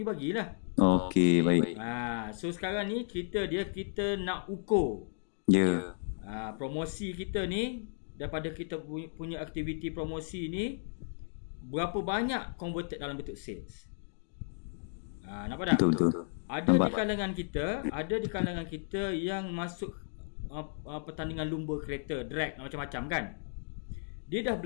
bagilah. Okey, baik. So sekarang ni kita nak ukur. Ya. Promosi kita ni, daripada kita punya aktiviti promosi ni, berapa banyak converted dalam bentuk sales. Nampak tak? Betul. Ada di kalangan kita yang masuk pertandingan lumba kereta, drag macam-macam kan. Dia dah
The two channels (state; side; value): silent; right; digital silence